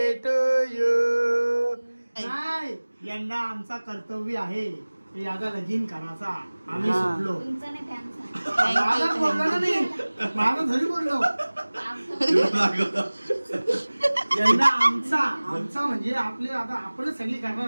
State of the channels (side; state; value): both; inverted; correlation -1.00